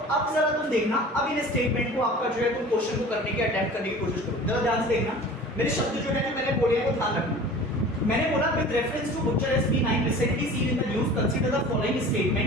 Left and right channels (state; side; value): normal; both; correlation 0.41